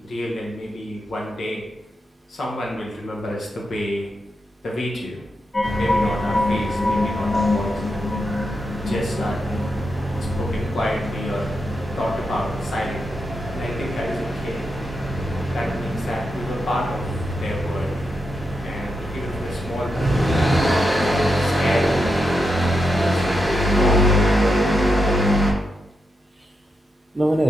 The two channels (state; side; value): normal; both; correlation 0.85